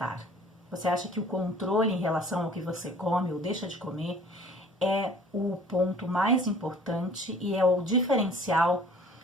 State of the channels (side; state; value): both; normal; correlation 0.51